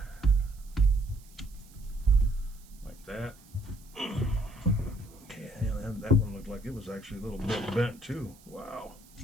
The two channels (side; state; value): right; noise; hiss, 25 dB below the sound